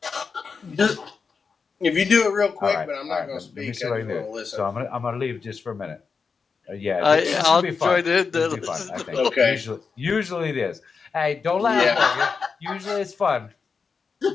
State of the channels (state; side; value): quieter; right; 5.3 dB